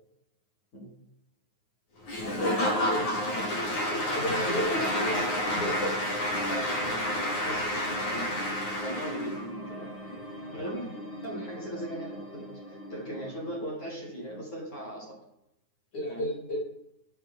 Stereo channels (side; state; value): right; late; 9.5 ms